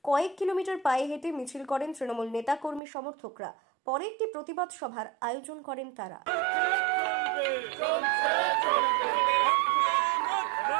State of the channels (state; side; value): drops out; left; at 2.8 s